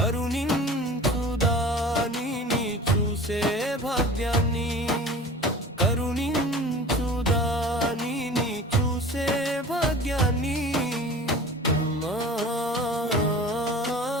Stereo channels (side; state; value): both; normal; correlation 0.40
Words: చూసే భాగ్యాన్ని కరుణించుదానిని చూసే భాగ్యాన్ని అమ్మా